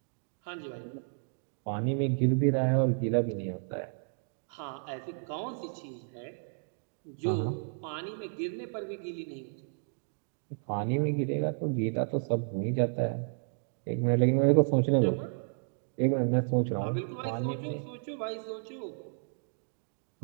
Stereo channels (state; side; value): silent; left; digital silence